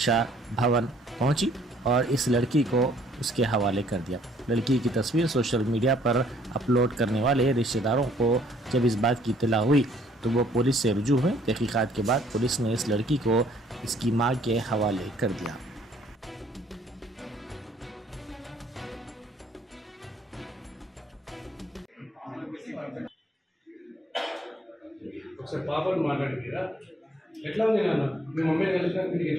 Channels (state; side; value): normal; both; correlation 0.63